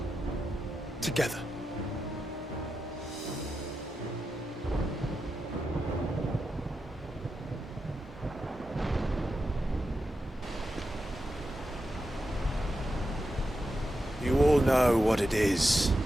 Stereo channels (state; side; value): normal; both; correlation 0.88